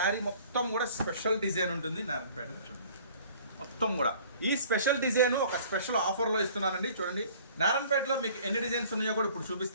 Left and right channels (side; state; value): both; inverted; correlation -0.52